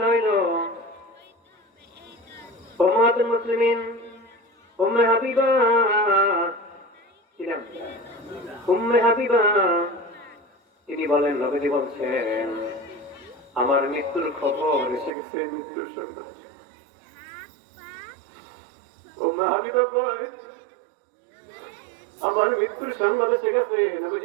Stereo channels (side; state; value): left; drops out; at 15.1 s